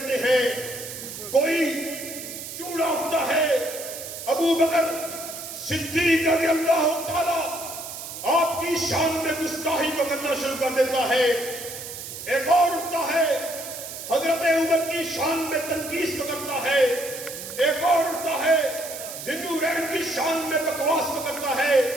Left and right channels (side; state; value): right; noise; hiss, 10 dB below the sound